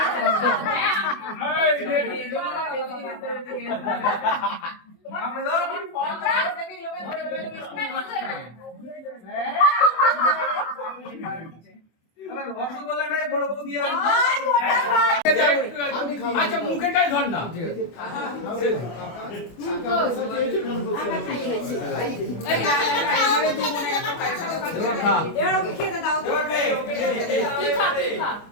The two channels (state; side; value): late; right; 24 ms